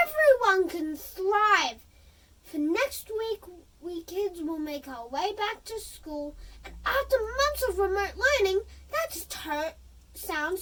can thrive. For next week, we kids will make our way back to school, and after months of remote learning, that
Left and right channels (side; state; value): both; identical; correlation 1.00